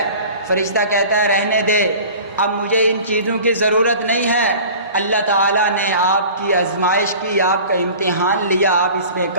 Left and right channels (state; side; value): inverted; both; correlation -0.42